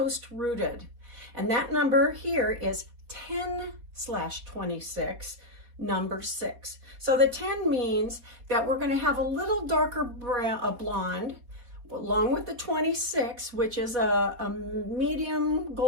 Rooted. And that number here is 10/26, number 6. So the 10 means that we're going to have a little darker blonde, along with the 26, which is a medium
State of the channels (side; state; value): left; late; 4.2 ms